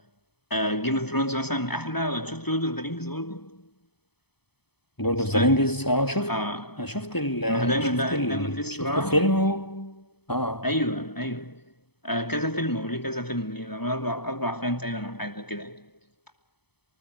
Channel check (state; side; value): late; right; 0.98 ms